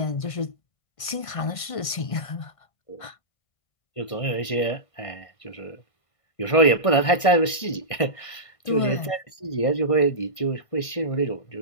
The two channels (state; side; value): late; right; 1.5 ms